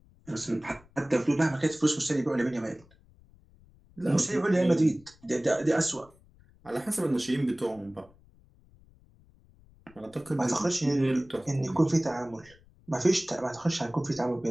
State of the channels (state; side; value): noise; left; rumble, 28 dB below the sound